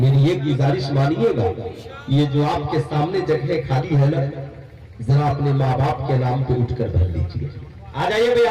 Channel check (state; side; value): identical; both; correlation 1.00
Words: ایک گزارش مانیے گا، یہ جو آپ کے سامنے جگہ خالی ہے نا، ذرا اپنے ماں باپ کے نام پہ اٹھ کر بھر لیجیے۔ آ جائیے بھائی،